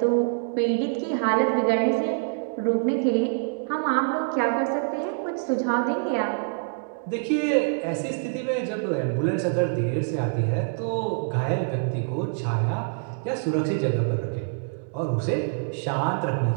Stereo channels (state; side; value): silent; left; digital silence